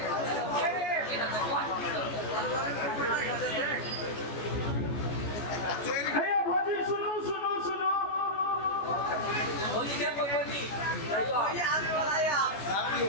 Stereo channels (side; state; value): right; late; 14 ms